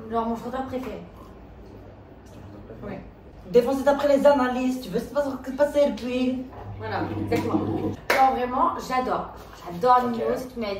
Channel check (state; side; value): identical; both; correlation 1.00